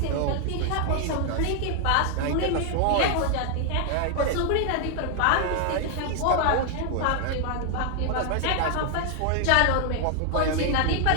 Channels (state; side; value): different; both; correlation 0.00